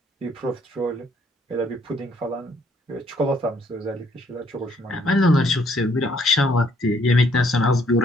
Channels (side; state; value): both; normal; correlation 0.66